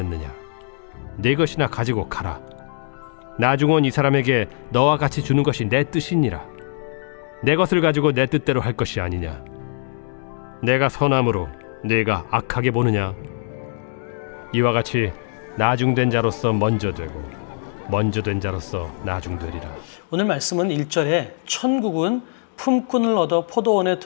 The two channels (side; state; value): right; silent; digital silence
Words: 네 것이나 가지고 가라. 나중 온 이 사람에게 너와 같이 주는 것이 내 뜻이니라. 내 것을 가지고 내 뜻대로 할 것이 아니냐. 내가 선함으로 네가 악하게 보느냐. 이와 같이 나중된 자로서 먼저 되고 먼저 된 자로서 나중되리라. 오늘 말씀은 1절에 천국은 품꾼을 얻어 포도원에